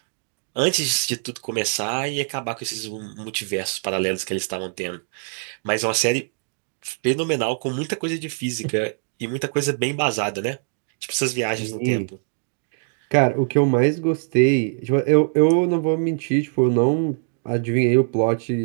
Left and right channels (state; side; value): silent; left; digital silence